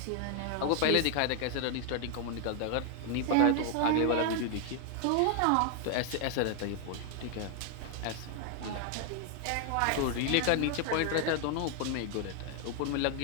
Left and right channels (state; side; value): different; both; correlation 0.00